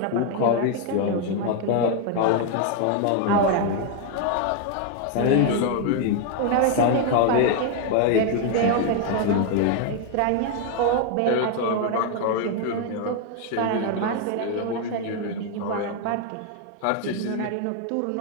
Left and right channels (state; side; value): different; both; correlation 0.01